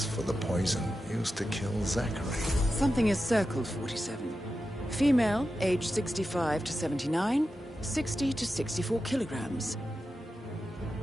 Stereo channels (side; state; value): both; normal; correlation 0.91